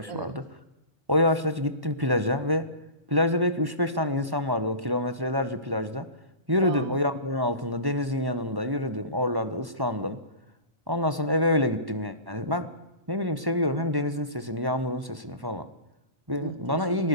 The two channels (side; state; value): left; late; 1.1 ms